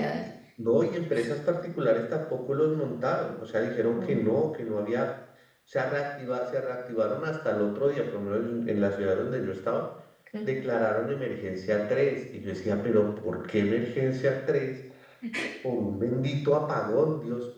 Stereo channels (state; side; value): identical; both; correlation 1.00